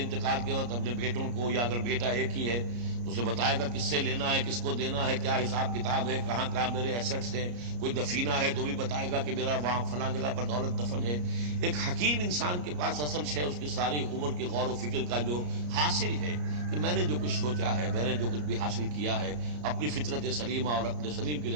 کے وقت اپنے بیٹوں کو، یا اگر بیٹا ایک ہی ہے تو اسے بتائے گا کس سے لینا ہے، کس کو دینا ہے، کیا حساب کتاب ہے، کہاں کہاں میرے ایسٹس ہیں. کوئی دفینہ ہے تو بھی بتائے گا کہ میرا وہاں فلاں جگہ پر دولت دفن ہے. ایک حکیم انسان کے پاس اصل شے اس کی ساری عمر کی غور و فکر کا جو حاصل ہے کہ میں نے جو کچھ سوچا ہے، میں نے جو کچھ بھی حاصل کیا ہے اپنی فطرت سلیمہ اور عقل سلیم کی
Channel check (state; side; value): late; left; 34 ms